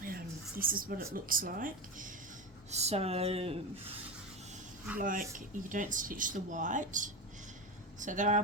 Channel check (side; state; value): both; normal; correlation 0.19